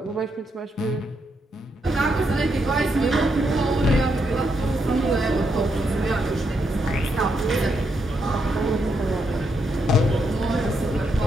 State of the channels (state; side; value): normal; both; correlation 0.79